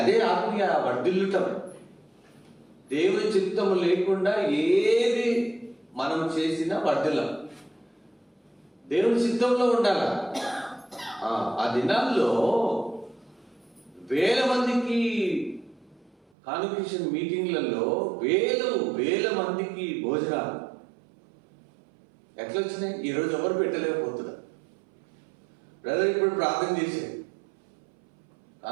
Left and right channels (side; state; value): left; drops out; at 16.2 s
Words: అదే ఆత్మీయ వర్ధిల్లుటం. దేవుని చిత్తము లేకుండా ఏది మనం చేసినా వర్ధిల్లం. దేవుని చిత్తంలో ఉండాలి. ఆ దినాల్లో వేల మందికి కాన్వకేషన్ మీటింగ్లలో వేల మందికి భోజనాలు ఎట్లా వచ్చినాయి? ఈరోజు ఎవరు పెట్టలేకపోతున్నారు. బ్రదర్ ఇప్పుడు ప్రార్థన చేశాడు,